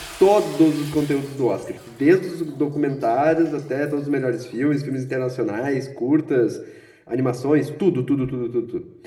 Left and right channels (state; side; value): identical; both; correlation 1.00